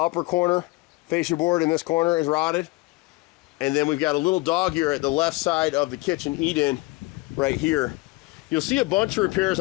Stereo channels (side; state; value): right; quieter; 22.7 dB